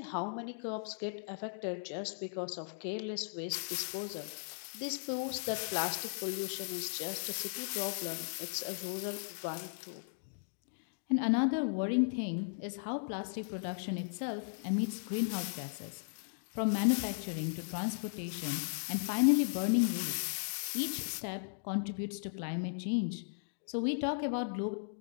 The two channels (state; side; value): silent; right; digital silence